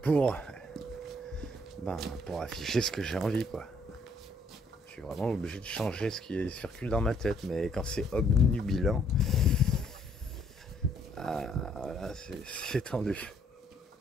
pour, pour afficher ce que j'ai envie, quoi. Je suis vraiment obligé de changer ce qui circule dans ma tête, mais quand c'est obnubilant, là c'est tendu.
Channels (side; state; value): both; normal; correlation 0.66